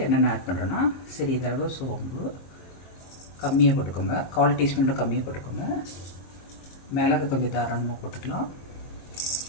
என்னென்ன ஆட் பண்ணுறோன்னா சிறிதளவு சோம்பு கம்மியாக போட்டுக்கோங்க, 1/4 டீஸ்பூன் கம்மியாக போட்டுக்கோங்க. மிளகு கொஞ்சம் தாராளமாக போட்டுக்கலாம்.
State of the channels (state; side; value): late; right; 22 ms